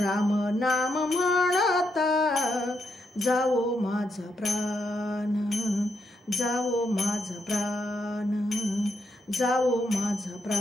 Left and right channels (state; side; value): normal; both; correlation 0.80